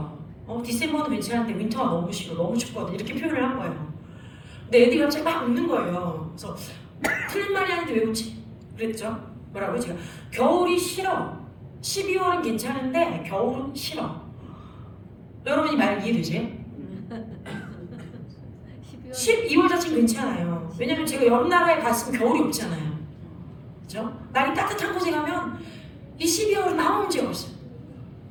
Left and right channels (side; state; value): both; identical; correlation 1.00